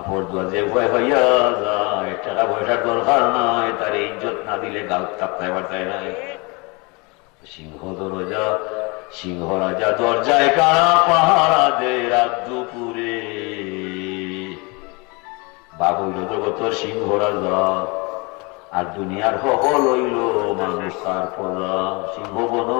দোয়া যে ভয় হইয়া যায়, টাকা পয়সার দরকার নাই, তার ইজ্জত না দিলে গাল চাপতায় বার্তায় নাই। সিংহ রাজা দরজায় কারা পাহারা দে রাত দুপুরে। বাবু জগতর সিংহ রাজা, আর দুনিয়ার সকল হইল মানুষ তার পদা। সিংহ বন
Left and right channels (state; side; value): quieter; right; 28.6 dB